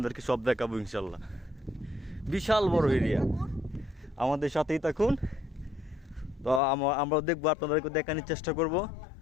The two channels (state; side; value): drops out; right; at 6.6 s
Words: সব দেখাবো ইনশাল্লাহ। বিশাল বড় এরিয়া, আমাদের সাথেই থাকুন। তো আমরা দেখবো, আপনাদেরকে দেখানোর চেষ্টা করব।